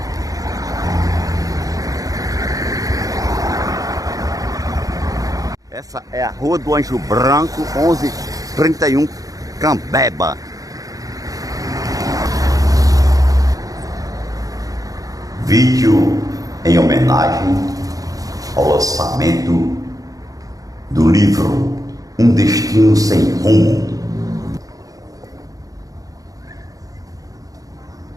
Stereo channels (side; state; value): left; late; 0.17 ms